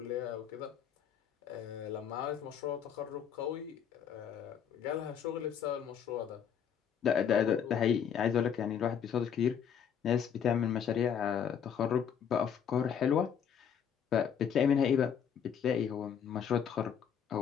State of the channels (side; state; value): right; quieter; 8.0 dB